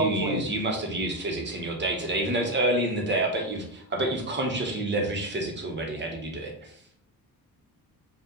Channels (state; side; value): normal; both; correlation 0.10